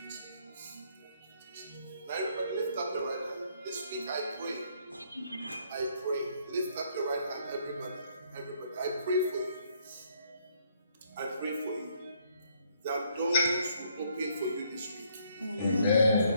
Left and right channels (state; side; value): inverted; both; correlation -0.68